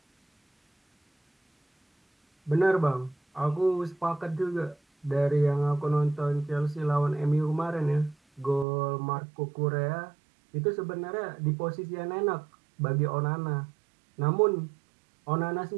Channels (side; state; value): left; drops out; at 8.7 s